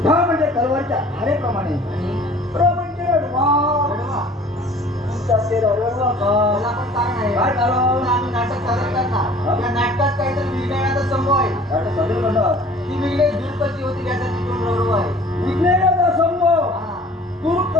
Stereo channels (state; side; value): normal; both; correlation 0.49